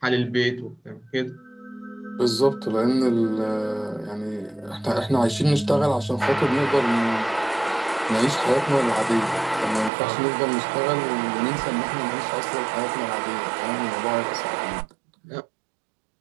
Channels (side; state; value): left; drops out; at 9.9 s